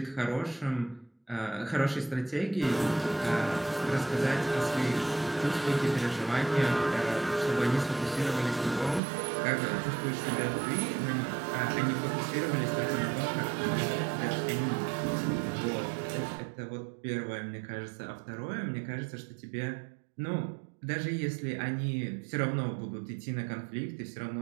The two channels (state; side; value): drops out; left; at 9.0 s